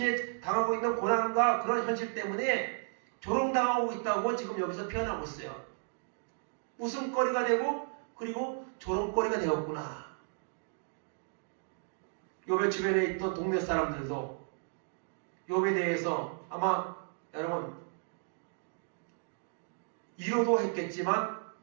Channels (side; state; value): left; silent; 55 dB below the other